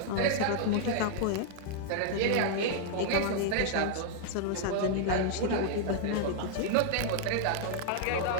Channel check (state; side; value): different; both; correlation -0.01